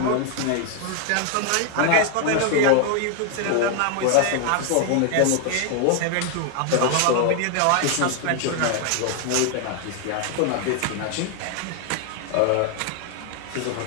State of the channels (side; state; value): both; different; correlation 0.00